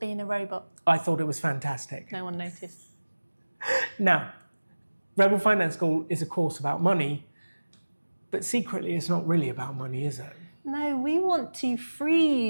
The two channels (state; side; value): inverted; both; correlation -1.00